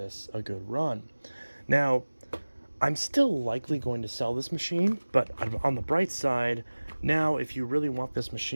a good run. Now, I'm still likely going to sell this machine, but on the bright side, now if you really want this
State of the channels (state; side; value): inverted; both; correlation -1.00